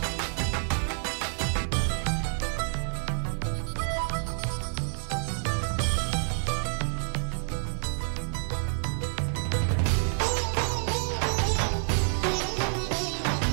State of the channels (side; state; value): left; silent; 59 dB below the other